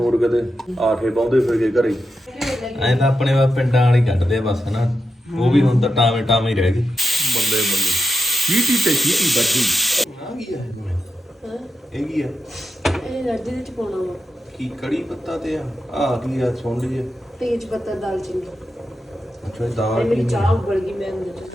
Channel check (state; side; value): normal; both; correlation 0.87